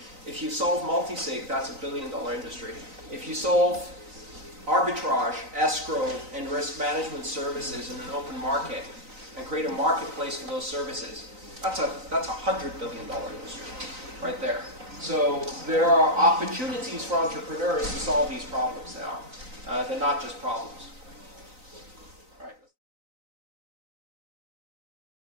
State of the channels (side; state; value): left; late; 3.9 ms